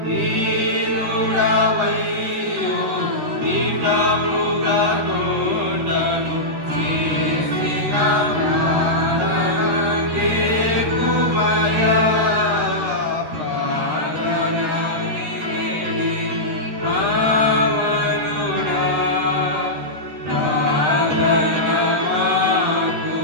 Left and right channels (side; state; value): left; late; 13 ms